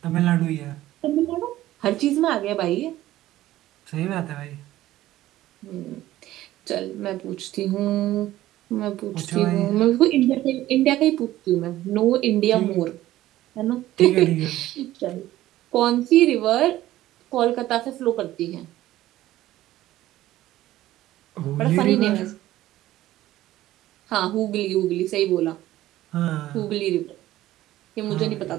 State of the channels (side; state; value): left; quieter; 15.0 dB